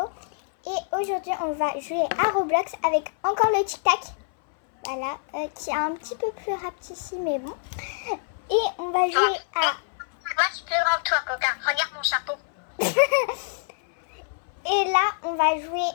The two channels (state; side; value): silent; right; 59 dB below the other